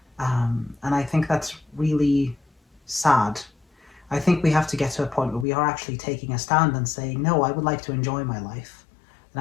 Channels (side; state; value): right; drops out; at 5.5 s